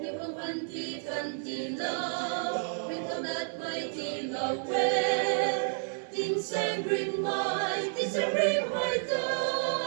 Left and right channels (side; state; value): left; silent; digital silence